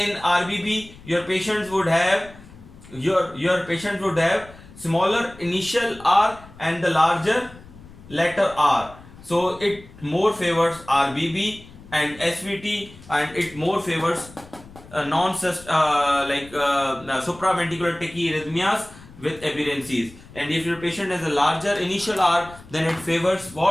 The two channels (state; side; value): noise; left; rumble, 20 dB below the sound